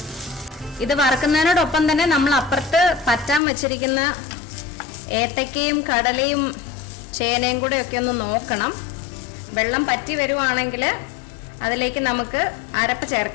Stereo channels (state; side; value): drops out; right; at 3.4 s